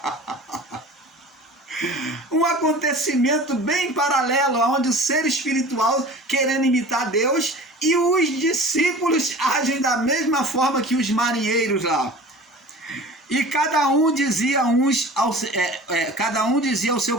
Um acontecimento bem paralelo, onde o ser espiritual querendo imitar Deus e os discípulos agem da mesma forma que os marinheiros lá. E cada um dizia ao seu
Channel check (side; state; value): both; normal; correlation 0.41